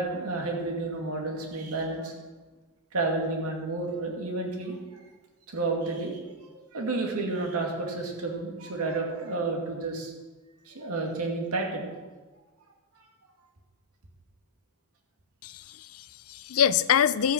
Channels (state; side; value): normal; both; correlation -0.10